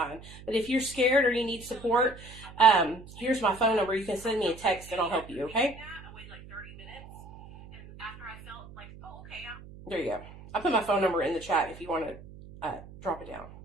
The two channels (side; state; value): right; noise; hum, 17 dB below the sound